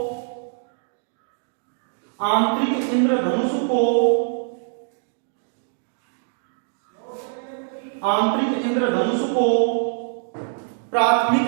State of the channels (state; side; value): silent; left; digital silence